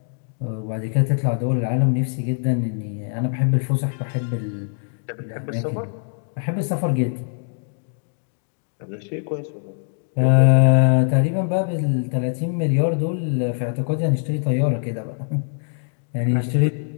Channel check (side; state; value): right; silent; digital silence